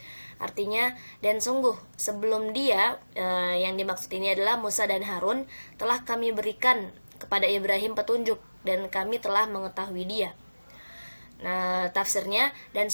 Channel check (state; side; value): inverted; both; correlation -1.00